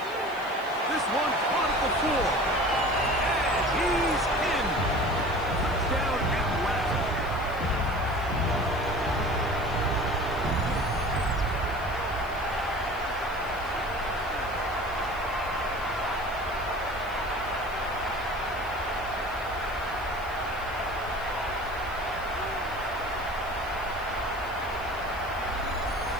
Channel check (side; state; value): left; noise; hiss, 22 dB below the sound